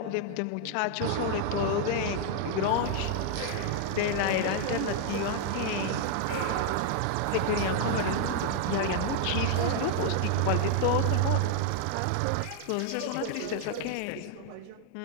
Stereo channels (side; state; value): both; different; correlation 0.00